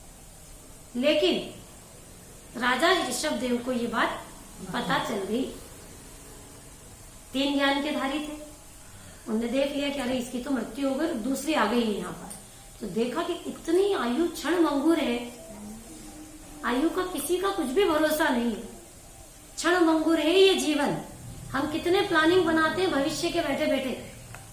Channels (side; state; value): both; identical; correlation 1.00